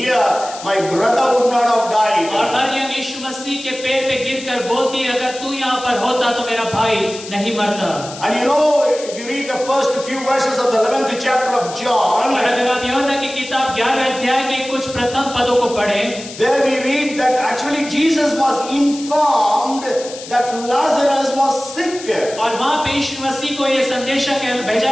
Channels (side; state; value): left; noise; hiss, 14 dB below the sound